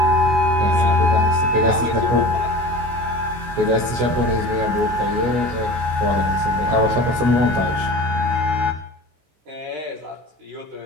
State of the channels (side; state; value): left; late; 16 ms